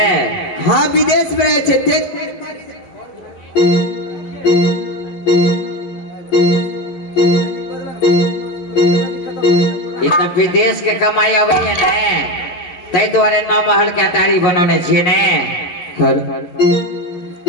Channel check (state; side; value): late; right; 11 ms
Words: हाँ विदेश में रहे छे। ते तो विदेश के कमाई अबै है ने, तै द्वारे 9 महल के अटारी बनौने छिए ने।